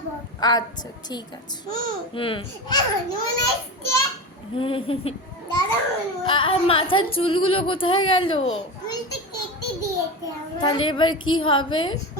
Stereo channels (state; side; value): normal; both; correlation 0.25